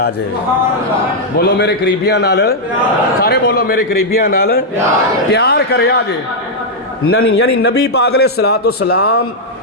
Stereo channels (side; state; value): both; normal; correlation -0.04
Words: بولو میرے قریبیاں نال، سارے بولو میرے قریبیاں نال پیار کرے آجے۔ یعنی نبی پاک علیہ السلام